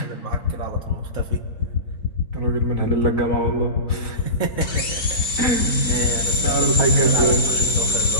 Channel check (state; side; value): late; right; 4.6 ms